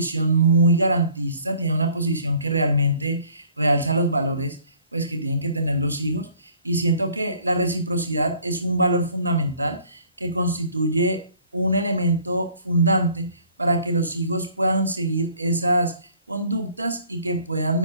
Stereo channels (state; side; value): inverted; both; correlation -0.56